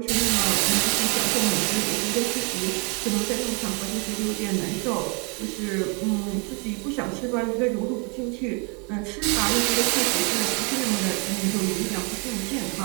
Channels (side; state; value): left; quieter; 34.1 dB